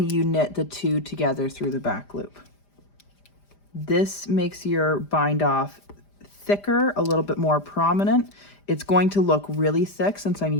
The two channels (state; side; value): late; right; 5.0 ms